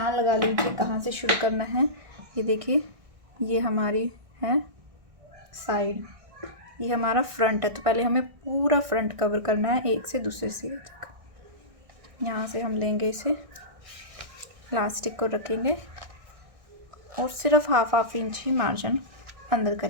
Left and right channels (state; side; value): late; left; 1.6 ms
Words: लगा लीजिए कहाँ से शुरू करना है। ये देखिए ये हमारी है साइड, ये हमारा फ्रंट है। तो पहले हमें पूरा फ्रंट कवर करना है एक से दूसरे सिरे तक। यहाँ से हम लेंगे इसे, इलास्टिक को रखेंगे और सिर्फ हाफ इंच ही मार्जिन अंदर